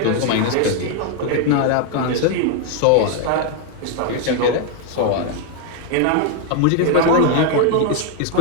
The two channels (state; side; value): different; both; correlation 0.01